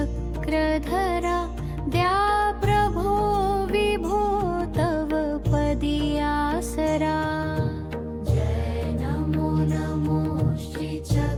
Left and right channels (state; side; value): identical; both; correlation 1.00